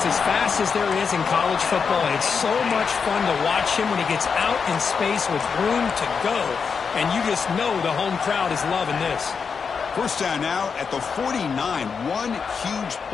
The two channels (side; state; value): right; quieter; 5.8 dB